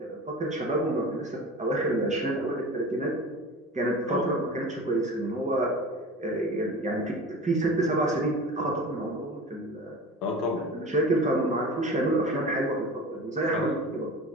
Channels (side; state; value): both; normal; correlation 0.35